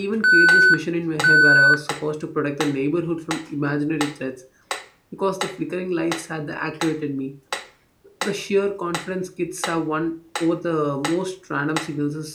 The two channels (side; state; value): both; identical; correlation 1.00